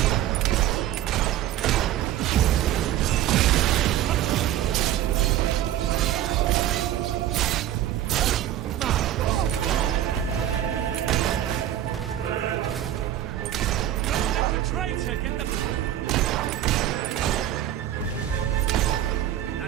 Traitor, get them.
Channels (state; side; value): quieter; left; 12.1 dB